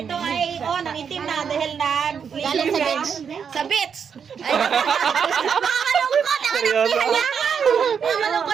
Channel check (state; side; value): quieter; left; 6.9 dB